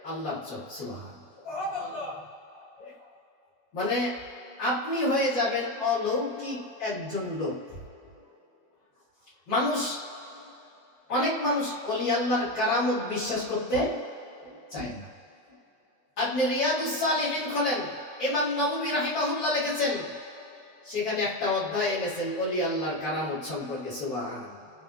আল্লাহর চোখ। সুবহানাল্লাহ। মানে আপনি হয়ে যাবেন অলৌকিক একজন লোক। অনেক মানুষ ওলি আল্লাহর কারামত বিশ্বাস করতে চায় না। আপনি রিয়াদুস সালিহিন খোলেন, ইমাম নববী রাহিমাহুল্লাহ লিখেছেন, সেখানে একটা অধ্যায় এনেছেন ওলি আল্লাহর কারামত সম্পর্কে। সুবহানাল্লাহ।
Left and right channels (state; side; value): late; right; 5.9 ms